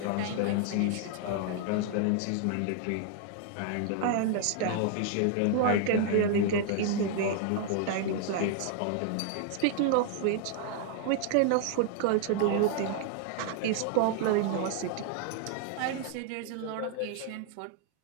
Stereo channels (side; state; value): both; different; correlation 0.00